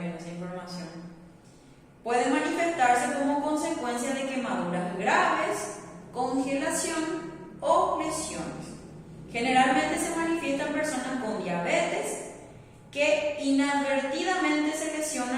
esa información, puede manifestarse como consecuencia de quemaduras graves, congelación o lesiones. Generalmente se manifiesta en personas con diabetes que inadvertidamente se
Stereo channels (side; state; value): both; identical; correlation 1.00